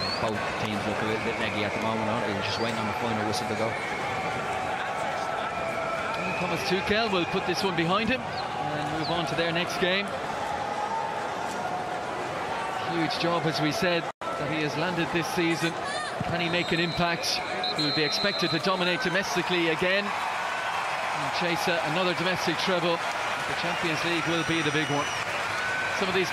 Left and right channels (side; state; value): both; identical; correlation 1.00